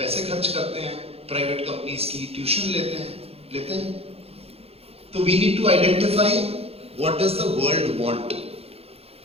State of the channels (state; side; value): late; left; 0.29 ms